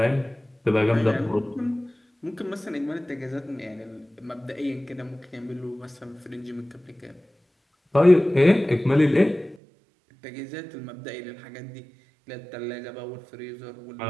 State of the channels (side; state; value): left; drops out; at 9.6 s